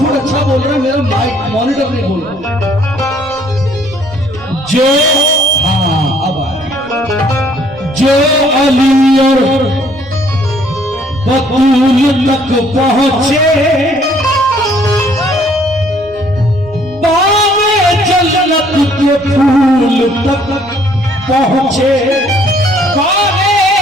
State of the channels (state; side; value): noise; right; rumble, 23 dB below the sound